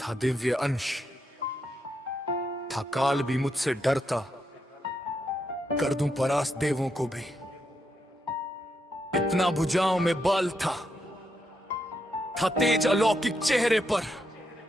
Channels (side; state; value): both; normal; correlation 0.81